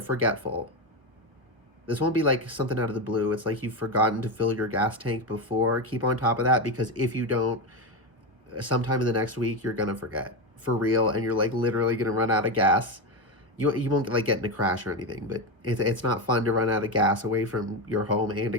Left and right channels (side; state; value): left; late; 1.3 ms